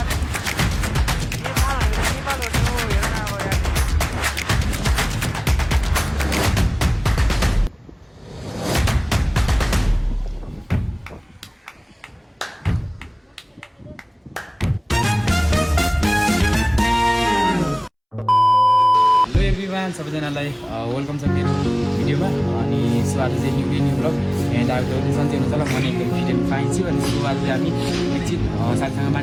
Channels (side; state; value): both; identical; correlation 1.00